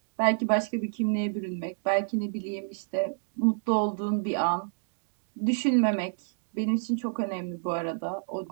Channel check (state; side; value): silent; left; digital silence